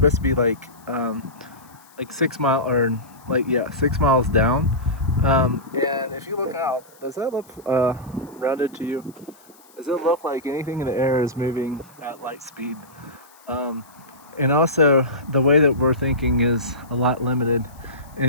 to be like 6 mile or like yeah 6 miles down. And if you look out, does that look rounded to you? Does it look like anything in the air is moving at light speed? Um, and also the way that we're thinking is a lot limited,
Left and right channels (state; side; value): noise; left; hiss, 27 dB below the sound